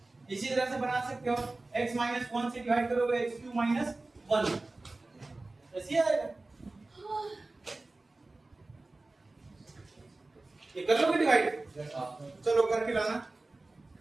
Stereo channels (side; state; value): left; quieter; 3.1 dB